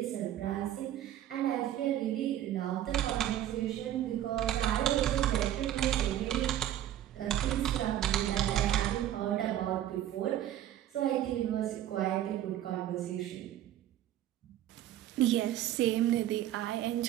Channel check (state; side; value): quieter; left; 12.3 dB